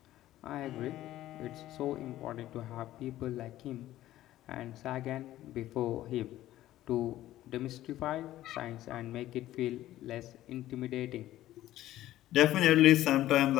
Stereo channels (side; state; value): right; quieter; 14.3 dB